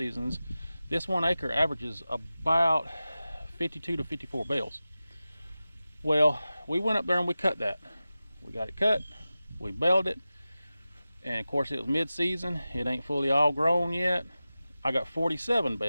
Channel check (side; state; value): both; inverted; correlation -0.95